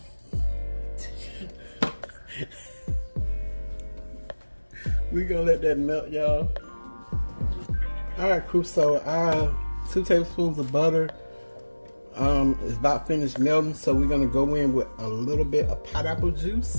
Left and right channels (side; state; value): both; inverted; correlation -1.00